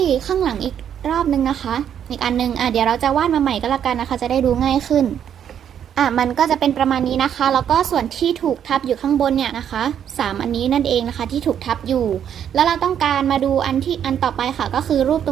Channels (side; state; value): left; quieter; 9.2 dB